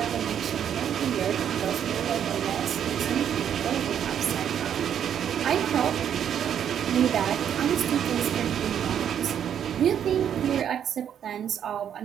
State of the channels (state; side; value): quieter; left; 9.1 dB